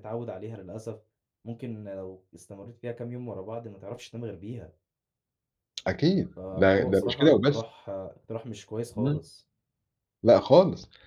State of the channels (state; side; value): identical; both; correlation 1.00